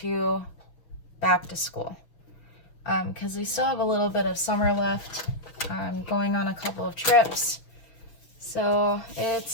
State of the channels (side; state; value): right; late; 6.4 ms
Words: back to school. Because we still have a little bit of summer left. I'm going on a couple of trips, so